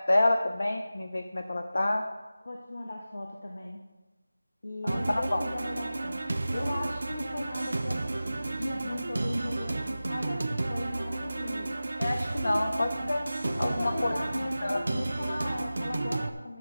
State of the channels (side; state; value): both; inverted; correlation -0.95